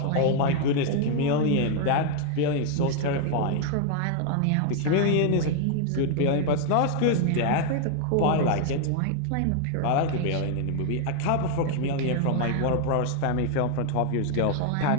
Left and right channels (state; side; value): different; both; correlation 0.00